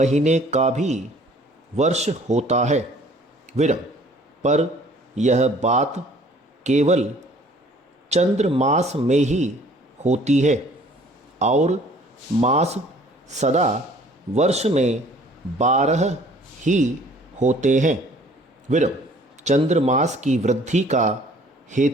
का भी वर्ष होता है। विरम, पर यह बात केवल चंद्रमास में ही होती है और मास सदा वर्ष में 12 ही होते हैं। विरम, चंद्रमास की वृद्धि का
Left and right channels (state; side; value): normal; both; correlation 0.55